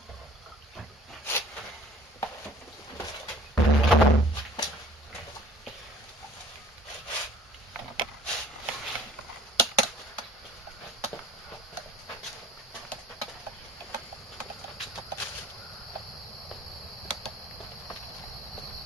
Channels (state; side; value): normal; both; correlation 0.50